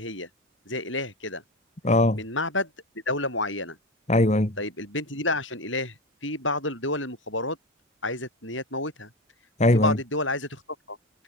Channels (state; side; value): normal; both; correlation 0.22